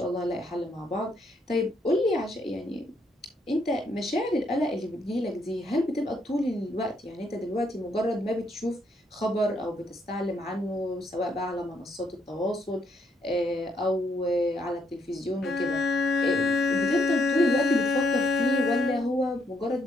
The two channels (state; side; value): normal; both; correlation 0.74